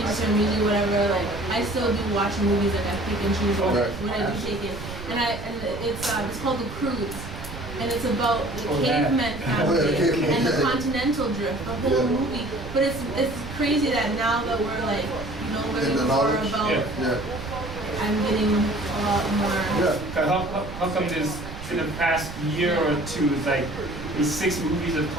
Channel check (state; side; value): noise; right; rumble, 11 dB below the sound